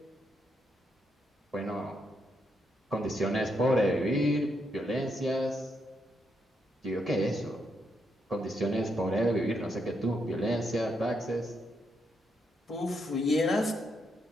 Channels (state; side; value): normal; both; correlation 0.79